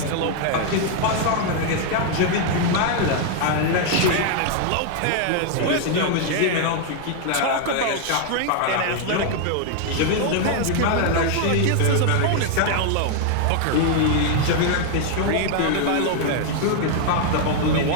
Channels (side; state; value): both; different; correlation 0.00